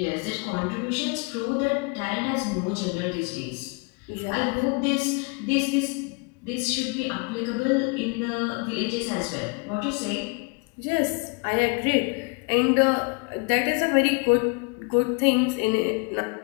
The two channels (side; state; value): right; quieter; 31.8 dB